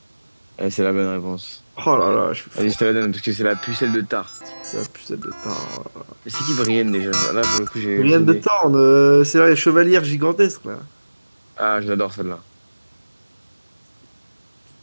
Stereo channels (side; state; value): both; inverted; correlation -1.00